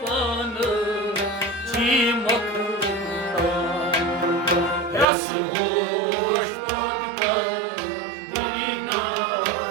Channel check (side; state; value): left; drops out; at 5.1 s